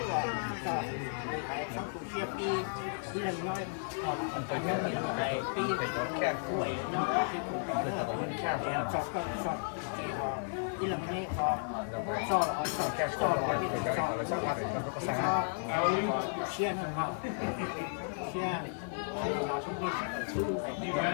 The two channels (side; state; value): right; silent; 55 dB below the other